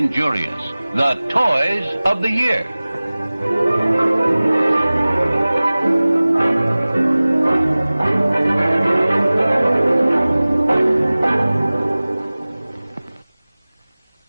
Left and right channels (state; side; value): inverted; both; correlation -0.99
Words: The Toys of the Year.